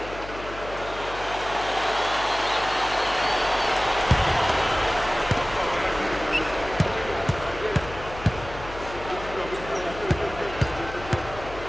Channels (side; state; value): left; noise; hum, 13 dB below the sound